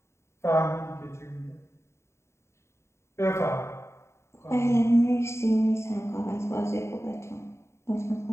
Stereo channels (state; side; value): late; right; 0.13 ms